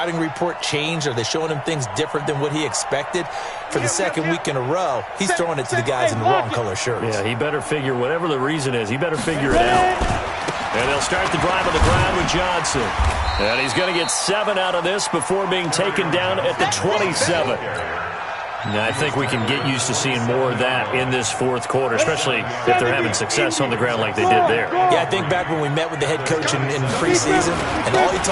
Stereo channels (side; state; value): both; identical; correlation 1.00